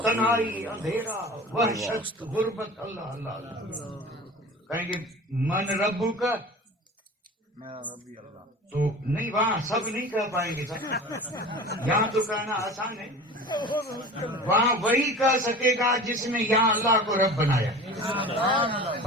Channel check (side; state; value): both; normal; correlation 0.37